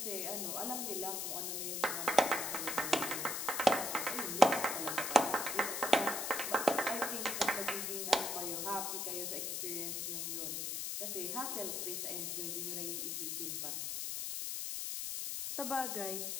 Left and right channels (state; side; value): noise; left; hiss, 2 dB below the sound